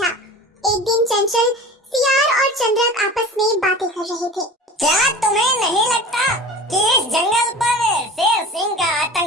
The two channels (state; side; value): normal; both; correlation 0.37